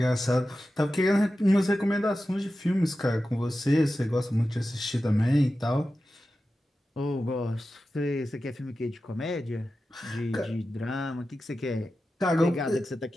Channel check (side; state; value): both; normal; correlation 0.93